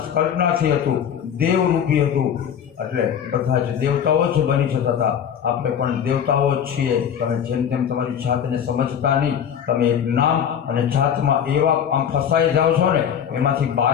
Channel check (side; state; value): right; quieter; 8.5 dB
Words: કલ્પનાથી હતું, દેવરૂપી હતું. એટલે બધા જ દેવતાઓ જ બની જતા હતા. આપણે પણ દેવતાઓ જ છીએ. તમે જેમ તેમ તમારી જાતને સમજતા નહીં. તમે એક નામ અને જાતમાં એવા આમ ફસાઈ જાઓ છો ને, એમાંથી